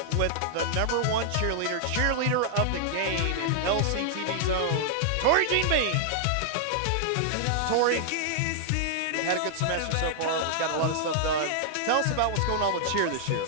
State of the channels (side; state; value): both; different; correlation -0.01